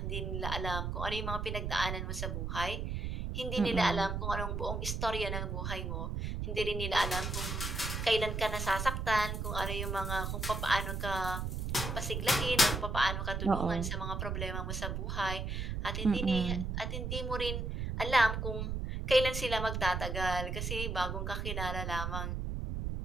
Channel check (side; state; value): right; noise; rumble, 2 dB below the sound